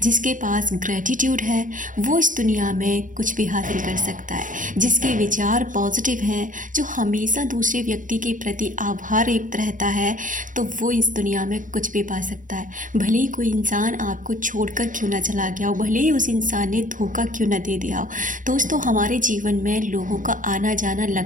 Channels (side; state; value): left; late; 0.38 ms